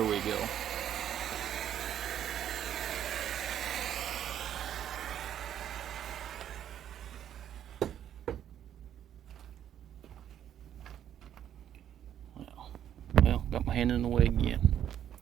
we go. Well, got my hand in the way again.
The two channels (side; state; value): left; quieter; 10.3 dB